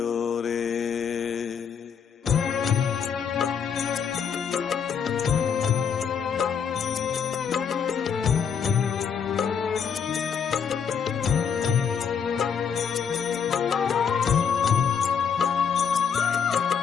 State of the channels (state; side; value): quieter; right; 7.0 dB